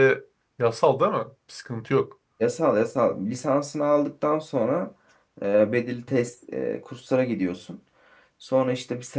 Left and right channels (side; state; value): both; identical; correlation 1.00